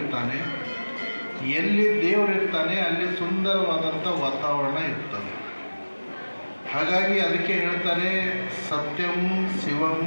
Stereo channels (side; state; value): both; inverted; correlation -1.00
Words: ಎಲ್ಲಿ ದೇವರು ಇರ್ತಾನೆ ಅಲ್ಲಿ ಸುಂದರವಾದಂಥ ವಾತಾವರಣ ಇರ್ತದೆ. ಹಾಗಾಗಿ ಅದಕ್ಕೆ ಹೇಳ್ತಾರೆ ಸತ್ಯಂ ಶಿವಂ